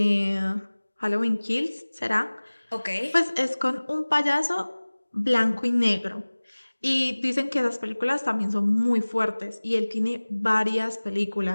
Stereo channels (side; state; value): both; inverted; correlation -1.00